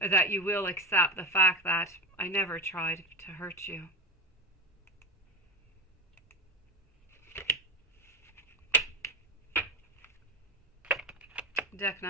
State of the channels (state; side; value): normal; both; correlation 0.21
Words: that you will accept the fact that I never tried to hurt you. Deck